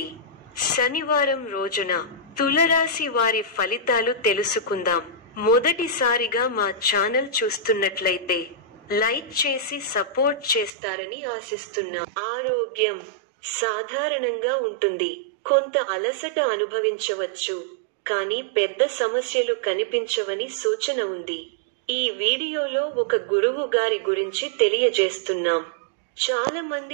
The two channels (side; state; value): left; drops out; at 10.7 s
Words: శనివారం రోజున తులరాశి వారి ఫలితాలు తెలుసుకుందాం. మొదటిసారిగా మా ఛానల్ చూస్తున్నట్లయితే లైక్ చేసి సపోర్ట్ చేస్తారని ఆశిస్తున్నాం. ఆరోగ్యం సాధారణంగా ఉంటుంది. కొంత అలసట అనుభవించవచ్చు, కానీ పెద్ద సమస్యలు కనిపించవని సూచన ఉంది. ఈ వీడియోలో ఒక గురువు గారి గురించి తెలియజేస్తున్నాం. చాలా